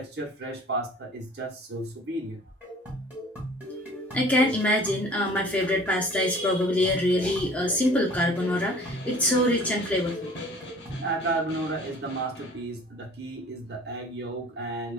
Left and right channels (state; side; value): normal; both; correlation 0.48